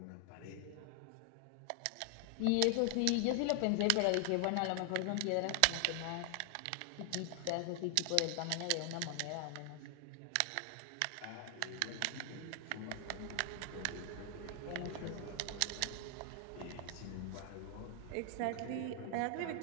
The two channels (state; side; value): different; both; correlation 0.00